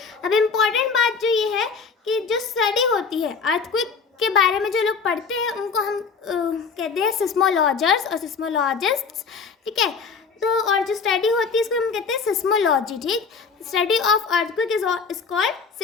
अब इम्पॉर्टेंट बात जो ये है कि जो स्टडी होती है अर्थक्वेक के बारे में, जो लोग पढ़ते हैं उनको हम कहते हैं सिस्मोलॉजर्स और सिस्मोलॉजिस्ट्स। ठीक है, तो और जो स्टडी होती है इसको हम कहते हैं सिस्मोलॉजी। ठीक, study of earthquake is called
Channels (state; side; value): quieter; right; 5.4 dB